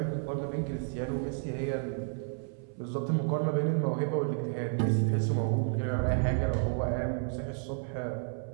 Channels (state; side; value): silent; left; 57 dB below the other